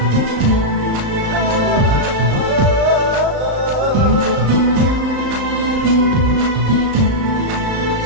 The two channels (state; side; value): late; left; 35 ms